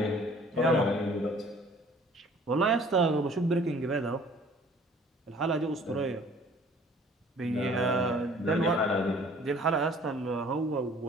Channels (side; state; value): both; normal; correlation 0.53